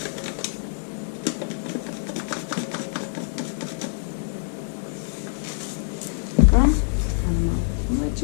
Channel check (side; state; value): right; silent; 60 dB below the other